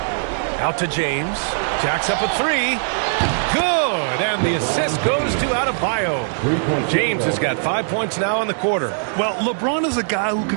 Out to James. Jacks up a 3. Good, and the assist goes to Adebayo. James has got 5 points now in the quarter. Well, LeBron is a guy who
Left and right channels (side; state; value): left; silent; digital silence